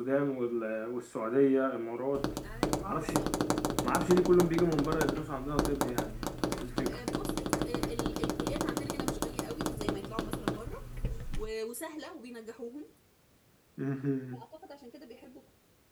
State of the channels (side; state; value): both; identical; correlation 1.00